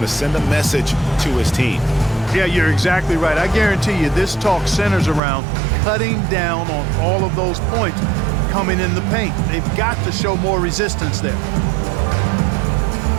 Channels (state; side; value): drops out; left; at 5.2 s